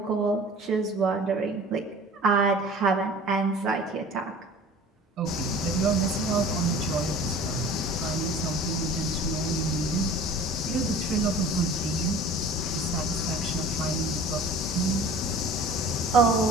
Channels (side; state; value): both; normal; correlation 0.43